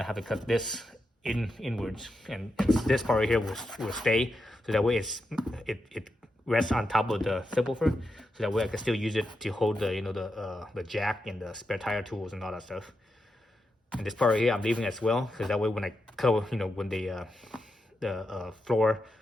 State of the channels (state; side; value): normal; both; correlation 0.86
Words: have to cut this inwards, and this part right here will stay, so that way it rests on top of the subwoofer, so that way I can still use it to hold the jack and the spare tire tools and all that stuff. And this part right here I'm leaving as well, because that way when I cover, when the floor